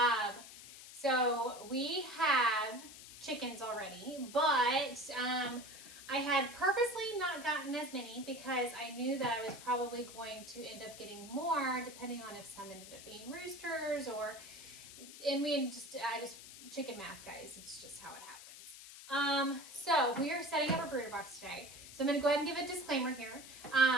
So we have chickens already, but I had purposely not gotten as many because I knew that I was probably going to end up getting more depending on if some ended up being roosters chicken math, guys. It's just how it happens. So we are setting up a brooder box today. So I'm going to go ahead and give a disclaimer here.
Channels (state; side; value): noise; left; hiss, 15 dB below the sound